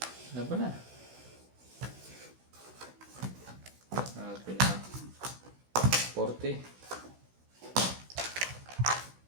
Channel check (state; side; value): late; left; 16 ms